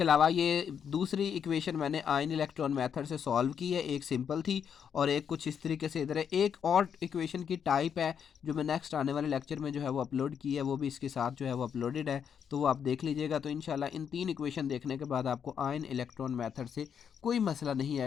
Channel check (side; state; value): right; quieter; 7.7 dB